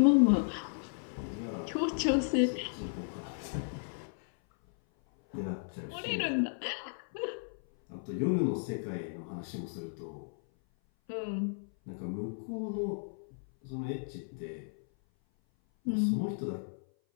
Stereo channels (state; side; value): silent; right; 55 dB below the other